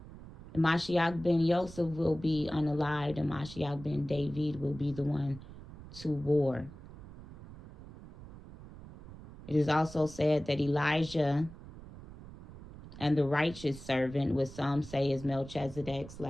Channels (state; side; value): noise; right; rumble, 16 dB below the sound